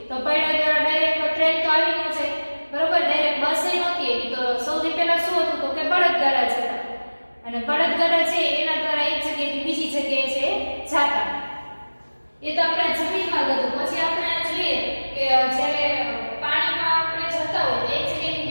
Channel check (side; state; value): both; inverted; correlation -1.00